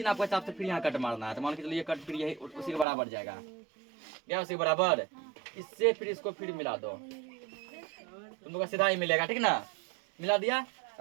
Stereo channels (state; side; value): drops out; left; at 2.9 s